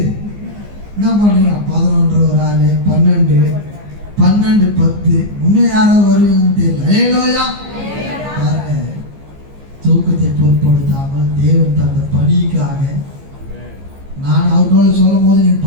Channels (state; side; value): late; left; 15 ms